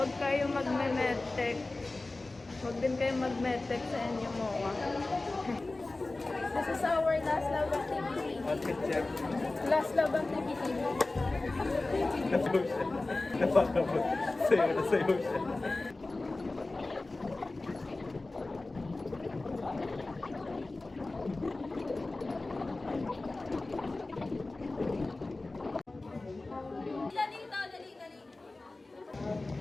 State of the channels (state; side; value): quieter; right; 3.1 dB